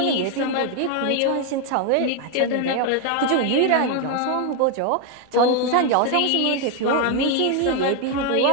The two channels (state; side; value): different; both; correlation 0.01